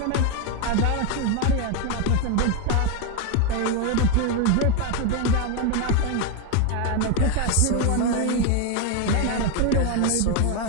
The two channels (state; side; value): different; both; correlation 0.02